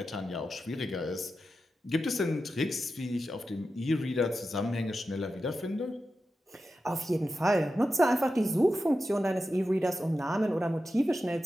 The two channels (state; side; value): normal; both; correlation 0.91